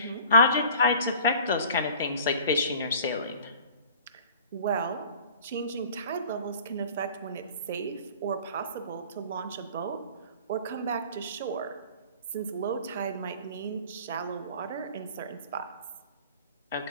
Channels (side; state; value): both; inverted; correlation -0.46